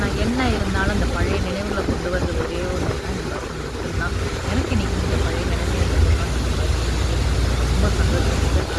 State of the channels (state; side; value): identical; both; correlation 1.00